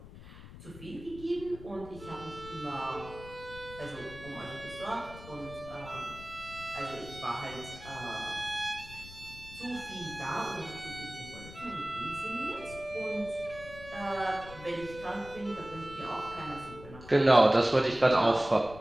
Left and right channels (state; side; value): noise; left; rumble, 15 dB below the sound